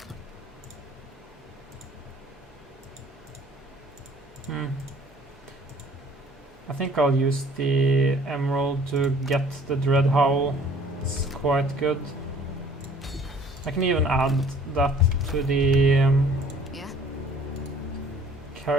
I think I'll use the emerald to get the Dread Howl. It's quite good. I can even add that to the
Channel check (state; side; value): normal; both; correlation 0.53